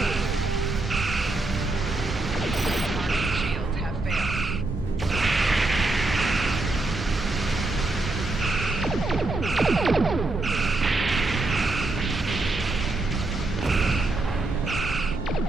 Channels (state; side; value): quieter; left; 3.0 dB